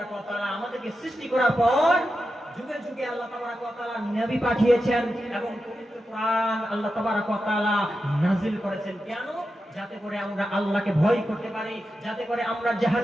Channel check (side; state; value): both; normal; correlation 0.90